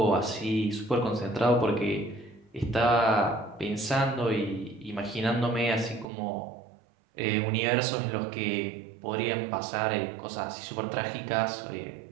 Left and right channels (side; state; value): left; drops out; at 6.1 s